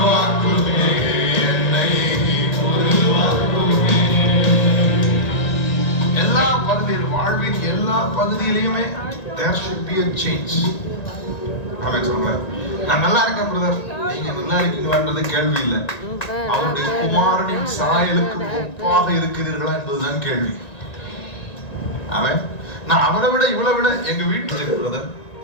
என்னை உருவாக்குமே. எல்லா பகுதியில் வாழ்வின் எல்லா பகுதியிலுமே there should be a change. ஆமென் சொல்லுங்க. நான் நல்லா இருக்கேன் பிரதர், நீங்க நல்லா இருக்கீங்களான்றது கேள்வி இல்லை. அவருடைய குமாரனின் சாயலுக்கு ஒப்பாக இருக்கிறீர்களா என்பதுதான் கேள்வி. ஆமென். நான் அவரை விட இவளை விட எங்க வீட்டுல இருக்கு பிரதர்,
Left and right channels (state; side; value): late; right; 1.9 ms